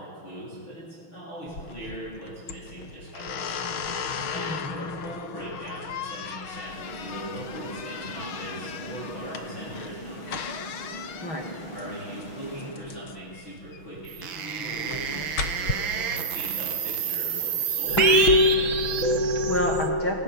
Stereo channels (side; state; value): right; late; 6.2 ms